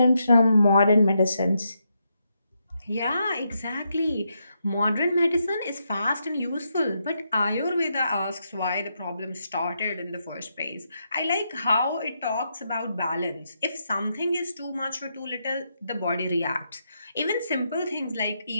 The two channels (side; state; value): both; inverted; correlation -0.81